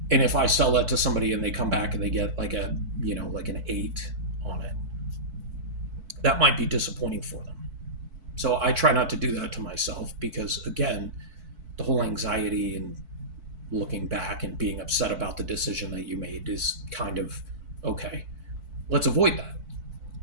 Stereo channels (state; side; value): late; left; 4.5 ms